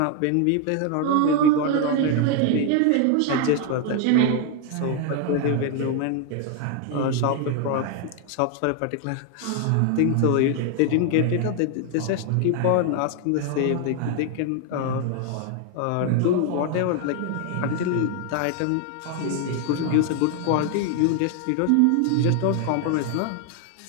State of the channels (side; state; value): both; different; correlation 0.01